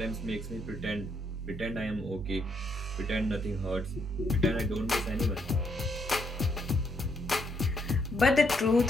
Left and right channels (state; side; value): normal; both; correlation 0.74